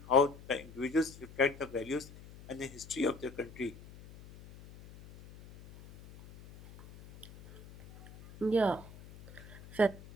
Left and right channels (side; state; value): left; noise; hum, 19 dB below the sound